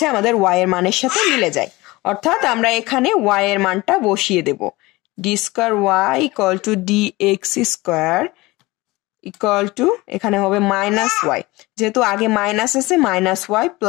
আমাদের y এর মানের সাথে মিলে যায়, অর্থাৎ আমরা এখানে y এর মানটা বসিয়ে দেব, d²y equal to dx² equal to, এখানে হবে মাইনাস y, যেহেতু আগে মাইনাস আছে minus y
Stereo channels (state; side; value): quieter; right; 21.2 dB